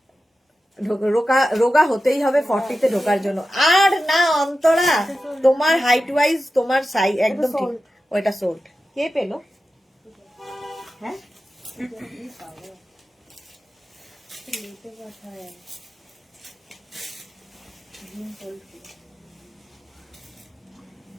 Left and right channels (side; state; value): both; normal; correlation 0.93